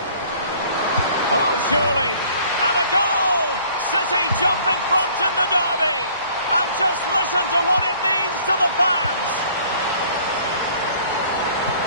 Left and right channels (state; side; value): inverted; both; correlation -0.54